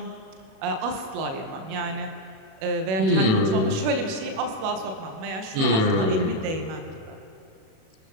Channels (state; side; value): late; left; 37 ms